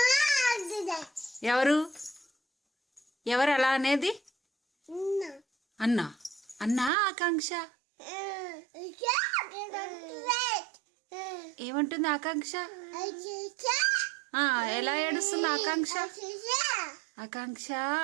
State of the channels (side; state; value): left; drops out; at 6.9 s